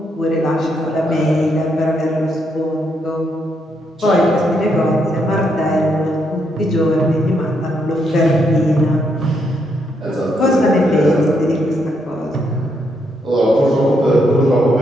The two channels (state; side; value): normal; both; correlation 0.77